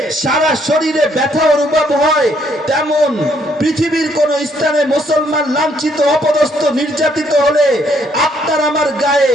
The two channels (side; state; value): both; normal; correlation 0.69